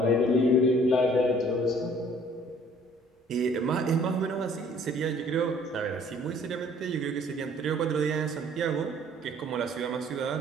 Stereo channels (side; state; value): both; normal; correlation 0.56